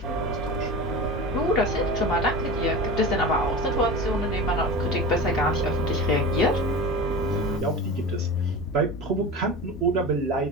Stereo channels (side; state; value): both; normal; correlation 0.31